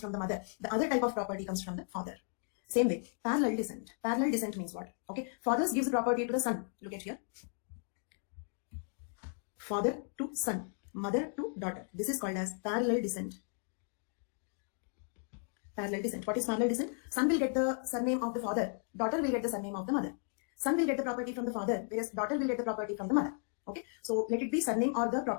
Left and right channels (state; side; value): silent; right; 54 dB below the other